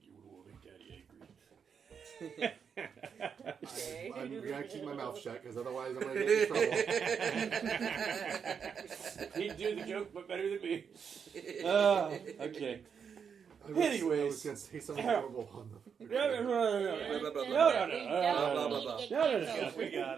You will make Daddy angry. I'm gonna keep my mouth shut because otherwise I'm gonna get in trouble. He'd do the joke, but better than me. Okay. I was Anyways. gonna say something horrible on the. No. We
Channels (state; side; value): quieter; left; 6.8 dB